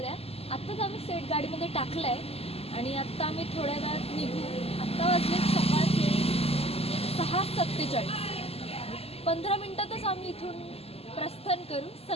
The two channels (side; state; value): right; late; 0.29 ms